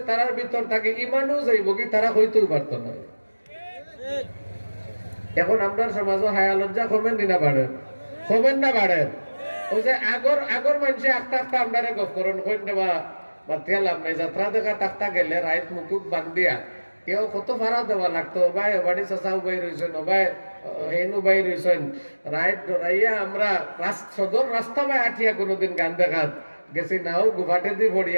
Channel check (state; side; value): inverted; both; correlation -1.00